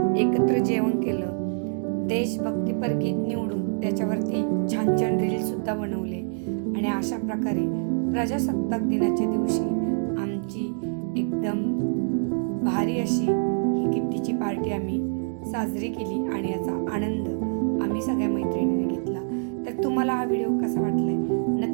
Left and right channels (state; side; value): silent; left; digital silence